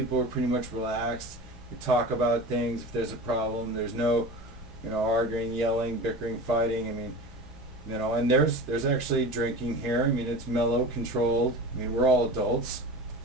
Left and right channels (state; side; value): noise; left; rumble, 18 dB below the sound